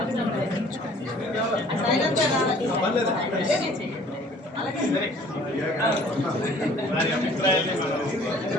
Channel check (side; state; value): both; normal; correlation 0.53